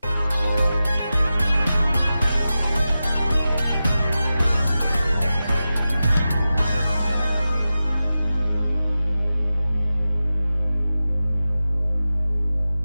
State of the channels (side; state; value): both; inverted; correlation -0.93